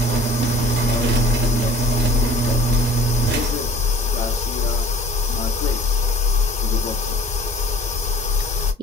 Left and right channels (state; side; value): normal; both; correlation 0.49